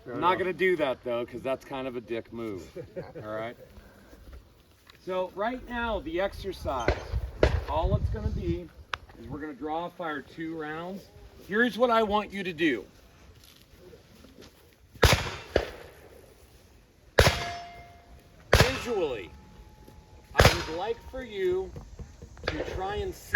I'm not going to do that though, because that's kind of a dick move. All right. So right now, the exercise, all it's going to be is we're going to draw fire 2 rounds. Here's what I want you to do. Visually, I would like for you to try and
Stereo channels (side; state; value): both; identical; correlation 1.00